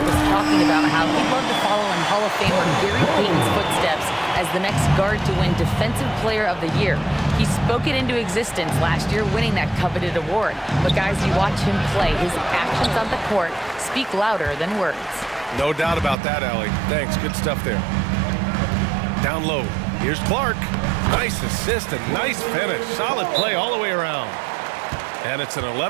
was talking about how he'd love to follow in Hall of Famer Gary Payton's footsteps as the next guard to win Defensive Player of the Year. He spoke it into existence last year, winning that coveted award. But guys, you watch him play, his actions on the court speak louder than words. No doubt about that, Allie. Thanks, good stuff there. Down low, here's Clark. Nice assist and nice finish. Solid play all the way around. And it's an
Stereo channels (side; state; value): left; drops out; at 16.2 s